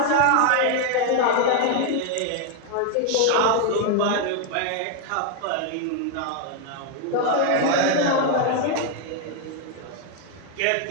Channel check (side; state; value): both; different; correlation 0.01